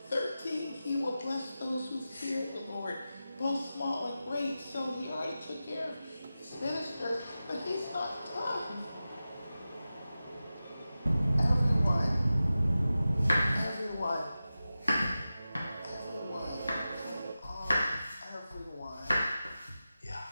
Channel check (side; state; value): both; inverted; correlation -0.94